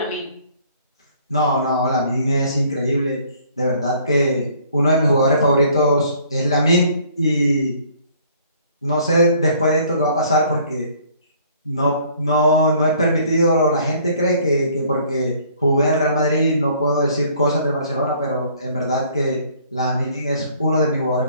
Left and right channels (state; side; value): inverted; both; correlation -0.59